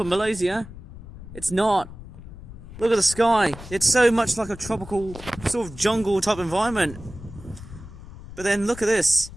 Malaysia. It's not. Look at the sky. It's so much like a tropical sort of jungle type environment. But then look at this.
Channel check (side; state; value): left; noise; rumble, 15 dB below the sound